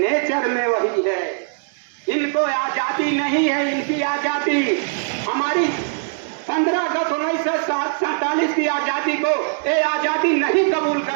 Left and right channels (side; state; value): left; silent; digital silence